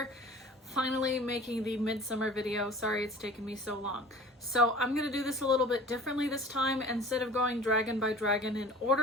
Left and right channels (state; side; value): normal; both; correlation 0.43